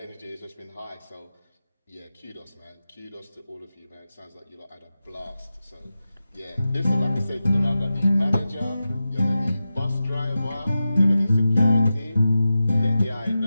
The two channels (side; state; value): both; inverted; correlation -0.92